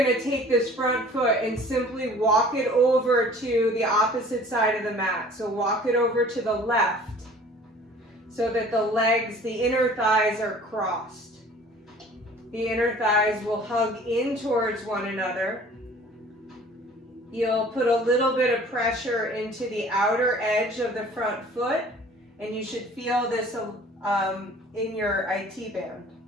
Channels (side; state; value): both; normal; correlation 0.49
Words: to take this front foot and simply walk it over to the opposite side of the mat. So walk it over to the left so that the legs, the inner thighs are crossed. The inner thighs will hug in towards one another. You'll put a little bit of pressure into the outer edge of the front foot, and you should feel this in your IT band,